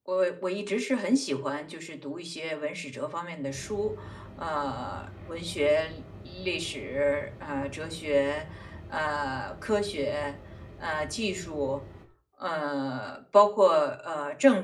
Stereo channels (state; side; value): identical; both; correlation 1.00